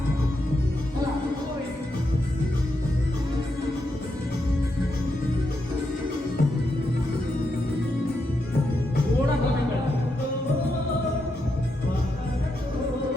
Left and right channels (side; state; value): both; normal; correlation 0.83